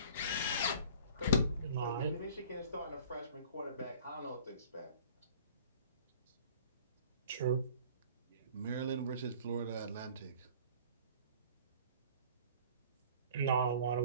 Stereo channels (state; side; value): inverted; both; correlation -0.48